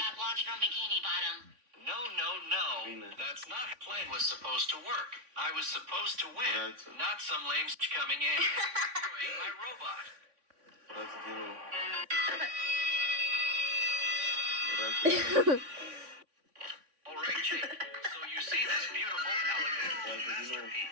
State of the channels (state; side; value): late; left; 3.5 ms